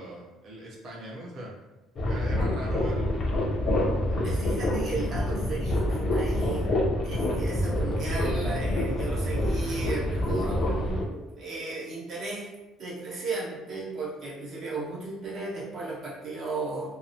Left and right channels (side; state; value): both; normal; correlation 0.73